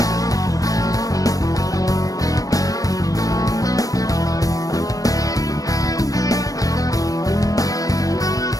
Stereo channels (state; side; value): late; right; 0.17 ms